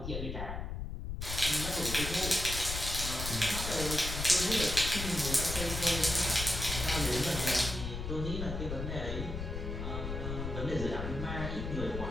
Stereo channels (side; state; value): left; noise; rumble, 5 dB below the sound